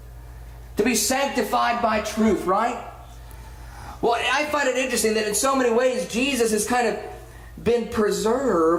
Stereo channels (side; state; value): both; identical; correlation 1.00